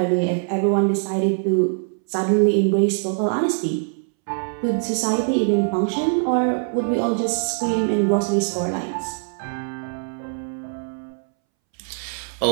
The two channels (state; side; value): silent; left; 64 dB below the other